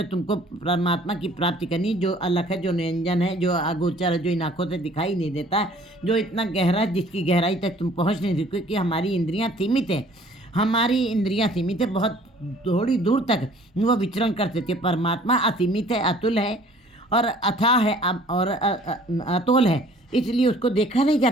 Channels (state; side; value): normal; both; correlation 0.54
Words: तुमको परमात्मा की प्राप्ति करनी, जो अलग है, जो निरंजन है, जो अगोचर है, जो इन आँखों से दिखाई नहीं देता, जो इतना गहरा, जिसकी गहराई तक तुम पहुँच नहीं सकते, क्योंकि हमारी इंद्रियाँ सीमित हैं। हमारी इंद्रियाँ सीमित है, बहुत थोड़ी दूर तक वो विचरण कर सकती है। परमात्मा असीमित है, अतुल है और अथाह है और अतोल है, इसलिए उसको देखा नहीं जा